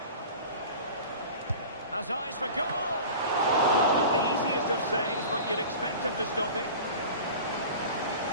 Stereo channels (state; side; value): inverted; both; correlation -0.37